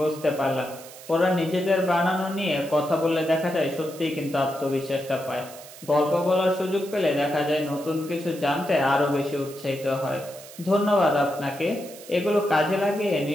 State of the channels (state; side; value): noise; right; hiss, 17 dB below the sound